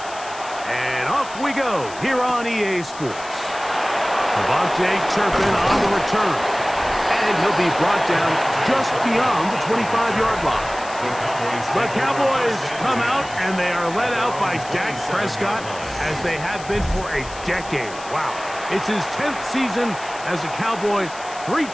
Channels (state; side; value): noise; left; hiss, 16 dB below the sound